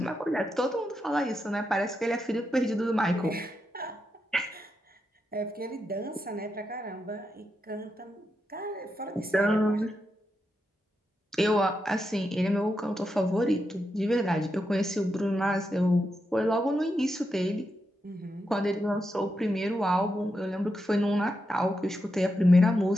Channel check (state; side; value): normal; both; correlation 0.85